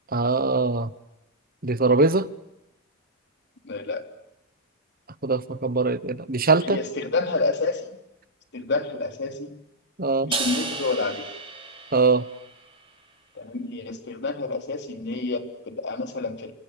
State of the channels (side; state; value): both; normal; correlation -0.13